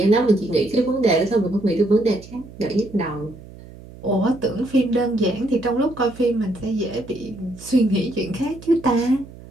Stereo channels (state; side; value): noise; right; hum, 18 dB below the sound